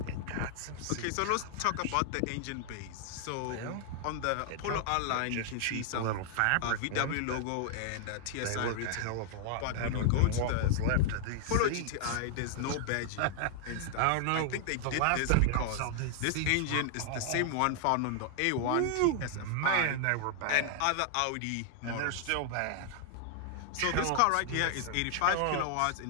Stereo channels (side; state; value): both; different; correlation -0.01